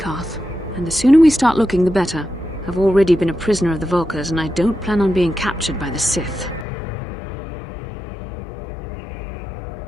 And the sooner we start looking, the better. I've already been a prisoner of the Vulkars, and I don't plan on being captured by the Sith.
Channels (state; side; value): drops out; right; at 6.7 s